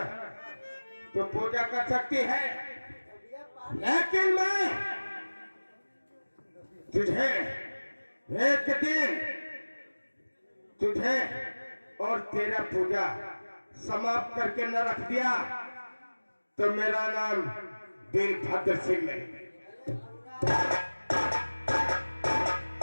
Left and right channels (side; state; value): both; inverted; correlation -1.00